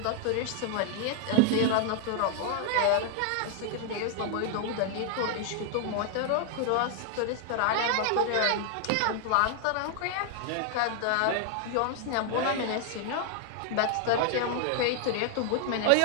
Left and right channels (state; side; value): different; both; correlation 0.00